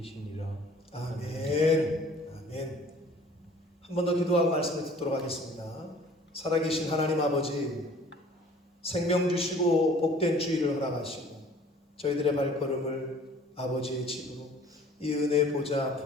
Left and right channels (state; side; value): normal; both; correlation 0.51